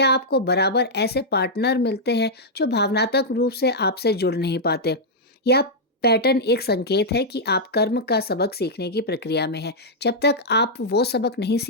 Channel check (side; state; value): both; normal; correlation -0.06